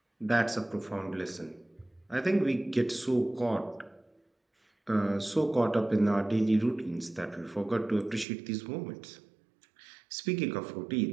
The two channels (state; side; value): drops out; left; at 8.2 s